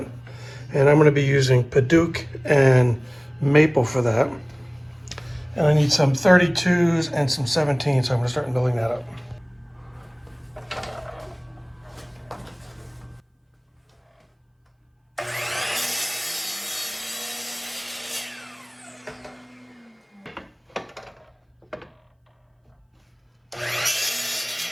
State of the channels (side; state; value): both; identical; correlation 1.00